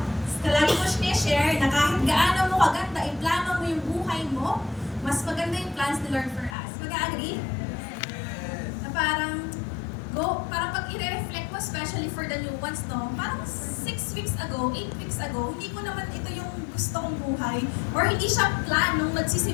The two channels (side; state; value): right; drops out; at 6.6 s